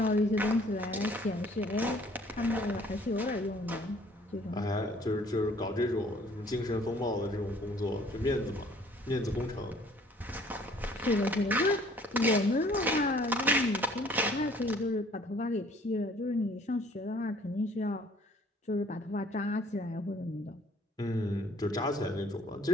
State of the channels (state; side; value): normal; both; correlation 0.57